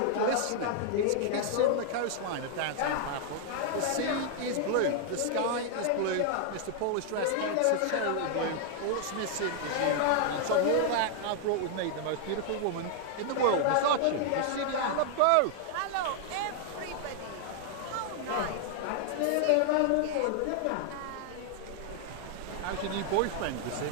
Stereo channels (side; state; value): both; different; correlation 0.00